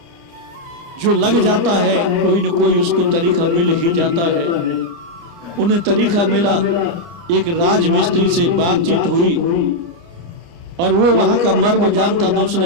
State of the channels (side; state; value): left; late; 29 ms